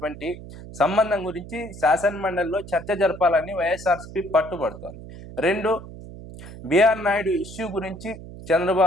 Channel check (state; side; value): noise; right; hum, 14 dB below the sound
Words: సంబంధం గురించి శాసన మండలిలో చర్చ జరపాలని వైఎస్ఆర్సీపీ పట్టుబడుతోంది. రెండు, బిఆర్ నాయుడు ఇష్యూ గురించి